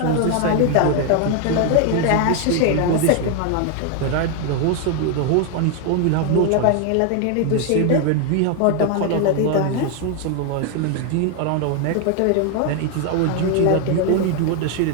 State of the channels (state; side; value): different; both; correlation 0.01